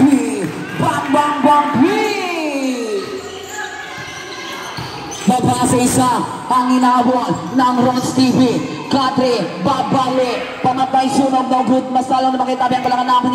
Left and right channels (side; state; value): both; identical; correlation 1.00